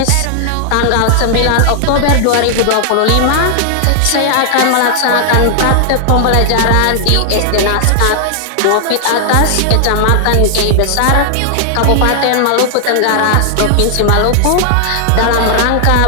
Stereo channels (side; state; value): both; different; correlation 0.00